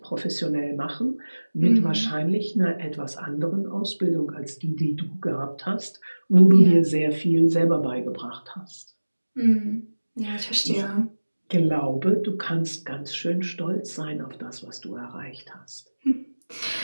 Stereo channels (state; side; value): inverted; both; correlation -1.00